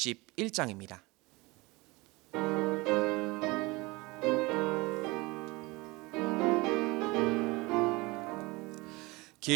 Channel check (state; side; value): quieter; left; 23.5 dB